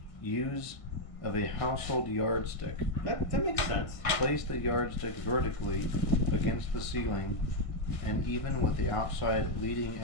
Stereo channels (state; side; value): late; right; 1.7 ms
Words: use of a household yardstick. That makes sense. Place the yardstick vertically against the ceiling and even with the outside leading